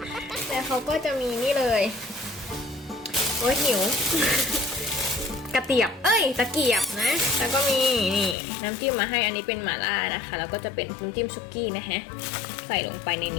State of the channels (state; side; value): drops out; right; at 8.3 s